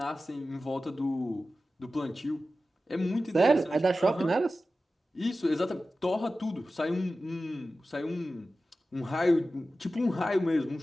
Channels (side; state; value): both; normal; correlation 0.94